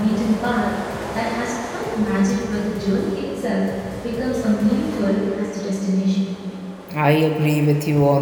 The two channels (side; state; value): both; identical; correlation 1.00